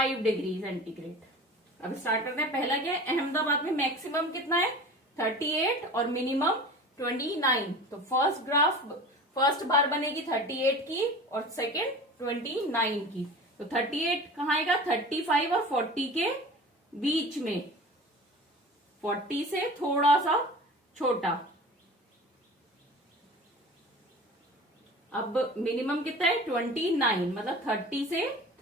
degree centigrade. अब स्टार्ट करते हैं। पहला क्या है, अहमदाबाद में मैक्सिमम कितना है 38 और मिनिमम 29। तो फर्स्ट बार बनेगी 38 की और सेकेंड 29 की। तो 38 कहाँ आएगा, 35 और 40 के बीच में, 40 से थोड़ा सा छोटा। अब मिनिमम कितना है 29, मतलब 30 से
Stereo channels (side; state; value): both; normal; correlation 0.38